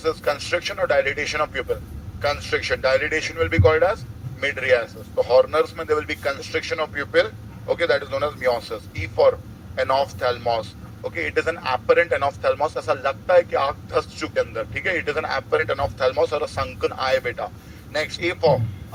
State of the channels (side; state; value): both; identical; correlation 1.00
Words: is constriction or dilatation of pupil. Constriction. Dilatation will be called as mydriasis. So Horner's में there will be constriction of pupil. Okay, that is known as meiosis. E for anophthalmos. Okay, it is an apparent anophthalmos. ऐसा लगता है कि आँख धंस चुके अंदर. ठीक है, it is an apparent anophthalmos or a sunken eye beta. Next, A for